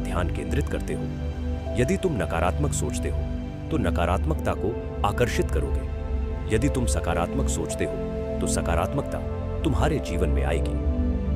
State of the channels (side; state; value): both; identical; correlation 1.00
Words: केंद्रित करते हो। यदि तुम नकारात्मक सोचते हो तो नकारात्मकता को आकर्षित करोगे। यदि तुम सकारात्मक सोचते हो तो सकारात्मकता तुम्हारे जीवन में आएगी।